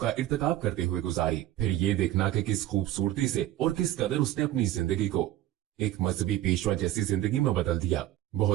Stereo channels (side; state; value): left; quieter; 13.9 dB